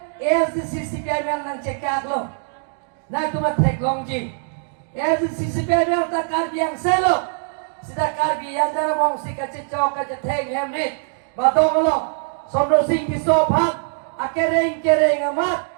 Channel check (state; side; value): silent; left; 63 dB below the other